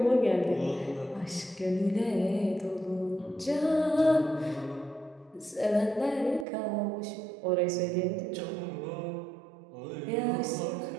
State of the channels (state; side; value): drops out; left; at 6.5 s